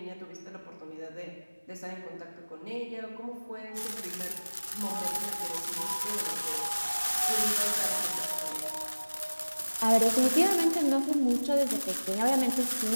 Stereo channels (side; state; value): both; inverted; correlation -1.00